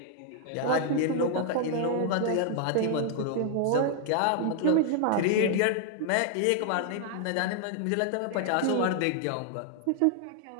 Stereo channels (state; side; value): different; both; correlation 0.00